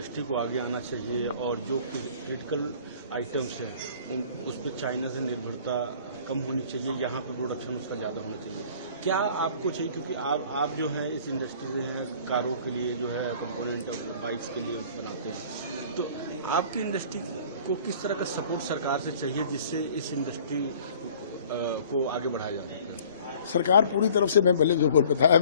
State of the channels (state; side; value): inverted; both; correlation -0.50